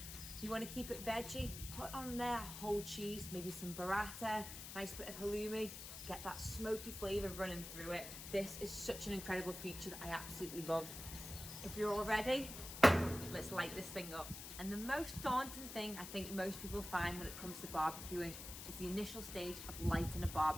you want to keep it veggie, put on there whole cheese, maybe some burrata, nice bit of halloumi, get that smoky flavour running through it. This is such an incredible feature that I absolutely love. If you're all ready, let's light this thing up. And the most daunting thing I think most people find when it comes to barbecuing is the initial stage of lighting a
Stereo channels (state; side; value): noise; left; hiss, 9 dB below the sound